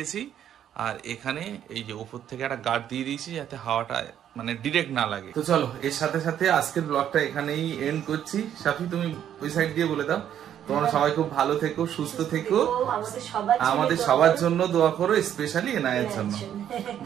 আর এখানে এই যে উপর থেকে একটা গার্ড দিয়ে দিয়েছি, যাতে হাওয়াটা মানে ডিরেক্ট না লাগে। তো চলো, এর সাথে সাথে আজকের ব্লগটা এখানেই এন্ড করছি। সাফি তুমি ওই সাইড দিয়ে বলে দাও। তোমরা সবাই খুব ভালো থেকো, সুস্থ থেকো, আমাদের সবার জন্য দোয়া করো, স্পেশালি এনায়ের জন্য।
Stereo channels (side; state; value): left; quieter; 10.1 dB